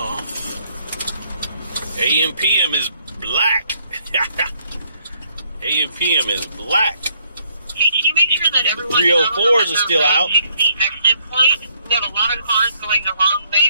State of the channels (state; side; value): inverted; both; correlation -0.70